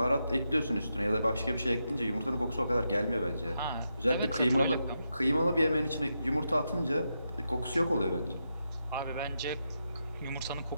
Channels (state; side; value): inverted; both; correlation -0.85